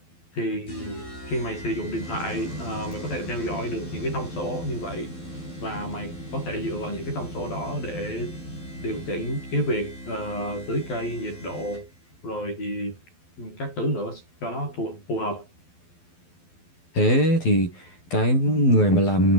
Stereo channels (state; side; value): late; right; 12 ms